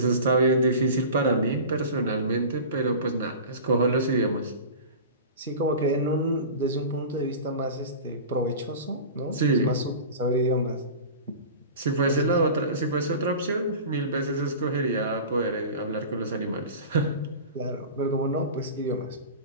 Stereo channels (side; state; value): both; inverted; correlation -0.34